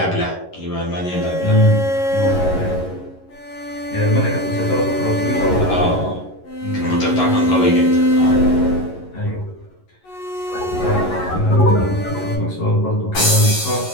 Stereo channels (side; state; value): right; late; 11 ms